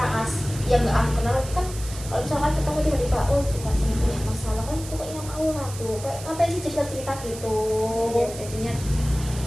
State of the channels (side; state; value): right; noise; hiss, 13 dB below the sound